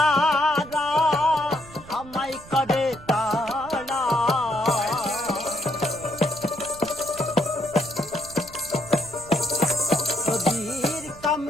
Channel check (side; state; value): right; noise; rumble, 20 dB below the sound